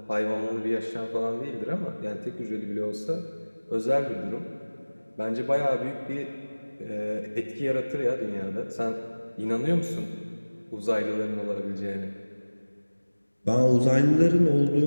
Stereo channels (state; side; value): inverted; both; correlation -1.00